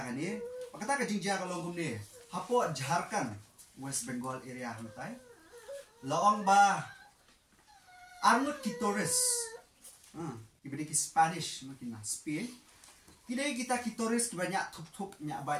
kan ni, kata ke jingjia kalau ngom ni, hapo Jharkhand, West Bengal area hantai, laong ba arnut kitores, diberi ki Spanish mungkin Spain. Kini kita kitores banyak tup nyak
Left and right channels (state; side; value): identical; both; correlation 1.00